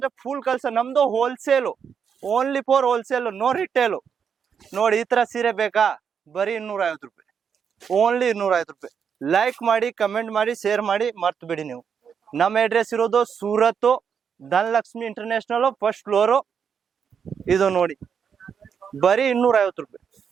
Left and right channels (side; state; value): left; quieter; 7.1 dB